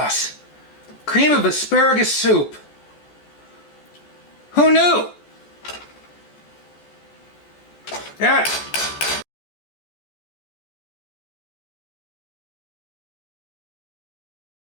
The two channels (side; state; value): right; late; 14 ms